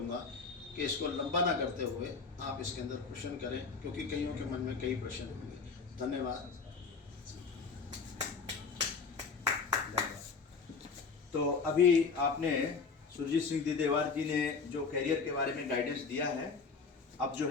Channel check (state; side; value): quieter; right; 4.9 dB